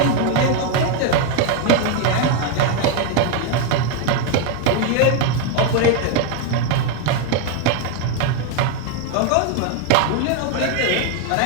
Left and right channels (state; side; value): different; both; correlation 0.01